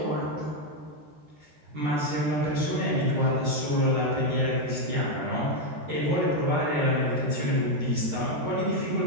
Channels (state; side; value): late; left; 13 ms